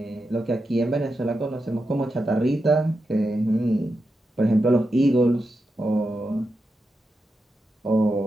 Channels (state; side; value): normal; both; correlation 0.88